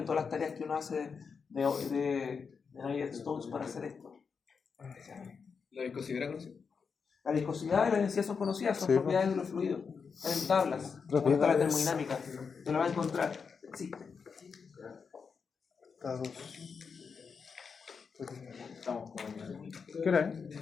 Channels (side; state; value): right; quieter; 5.7 dB